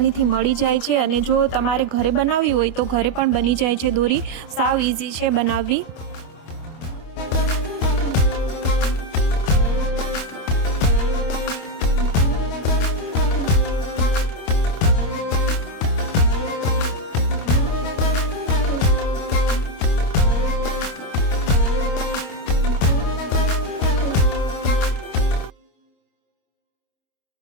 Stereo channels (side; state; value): right; late; 25 ms